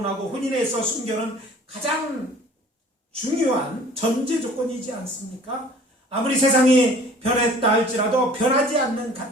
혼인에 있어 순결은 가장 중요한 전제 조건이지 않습니까? 아무리 세상이 변했다 할지라도 변하지 않는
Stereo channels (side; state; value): both; normal; correlation 0.49